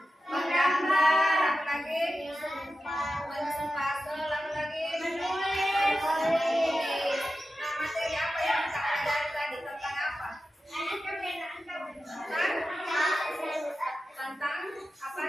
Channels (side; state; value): both; normal; correlation 0.92